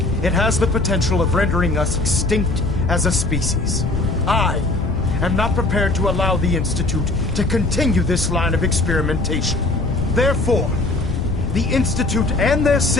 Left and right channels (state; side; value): noise; left; rumble, 4 dB below the sound